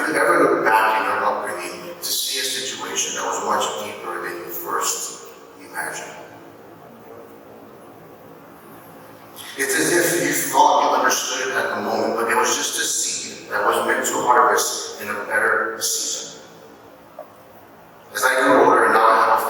you ever looked back in your upbringing to see a situation that was much deeper than you first imagined? It's as if you thought you understood it at the moment, but it was just a seed that was meant to harvest in a better season. As I grew older and now I have a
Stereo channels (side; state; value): both; identical; correlation 1.00